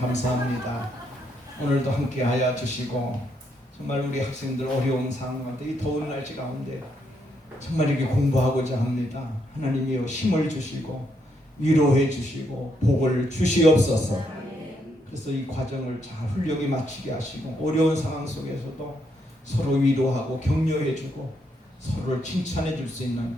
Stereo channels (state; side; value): normal; both; correlation 0.76